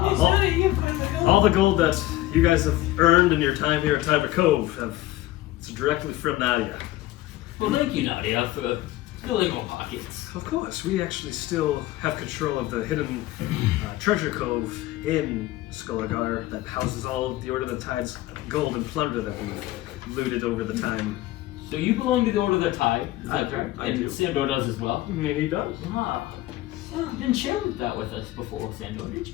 yes, all- Nadia, you have quite a bit of gold. all the gold that you guys have earned in your time here at Tiber Cove it's directly from Nadia. Well, thank you, Nadia, for filling our pockets. Of course, we actually still have control of the hidden treasure cove in Skulagar that houses all of the Order of the Tide's gold and plunder that we've looted over the time. So you belong to the Order of the Tide, is I that do, correct? I And do. Sandor does as well. I mean, he does. Ah. Oh, you didn't share that with us before, Sandor, did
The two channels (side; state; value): right; quieter; 16.5 dB